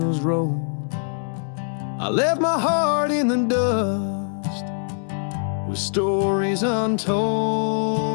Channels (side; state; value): right; silent; digital silence